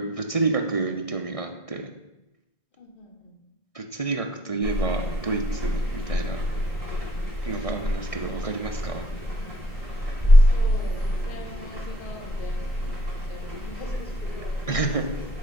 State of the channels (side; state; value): right; late; 1.6 ms